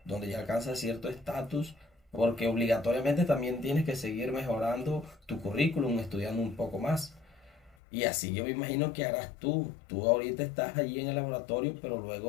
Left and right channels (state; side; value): drops out; right; at 7.8 s